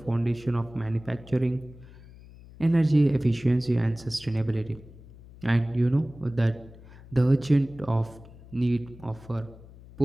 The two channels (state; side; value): noise; left; hum, 20 dB below the sound